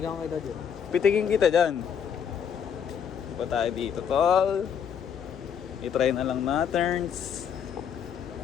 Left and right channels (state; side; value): quieter; right; 7.9 dB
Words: kita dyan. Pitigin kita dyan. Pa tayo dito, tol. I-try na lang natin.